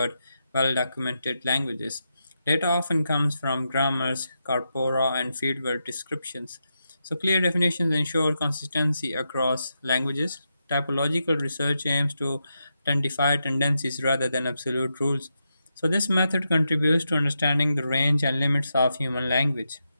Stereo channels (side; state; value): both; inverted; correlation -0.86